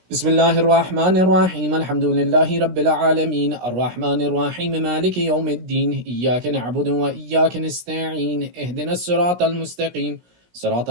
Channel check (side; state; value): left; late; 17 ms